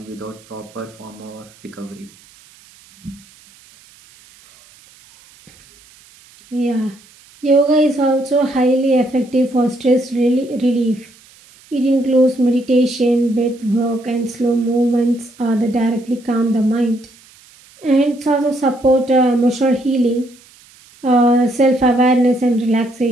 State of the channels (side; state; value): right; noise; hiss, 27 dB below the sound